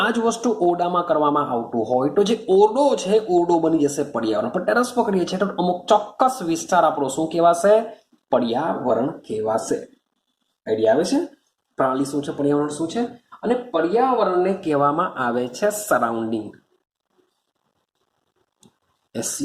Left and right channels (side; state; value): both; identical; correlation 1.00